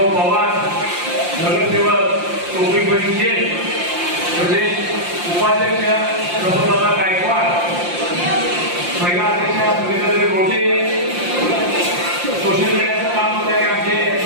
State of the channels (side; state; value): left; late; 5.7 ms